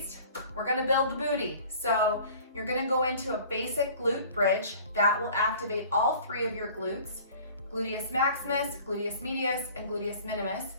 we're gonna build the booty. So you're gonna go into a basic glute bridge that will activate all three of your glutes, gluteus maximus, gluteus medius, and gluteus minimus.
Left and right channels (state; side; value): inverted; both; correlation -0.48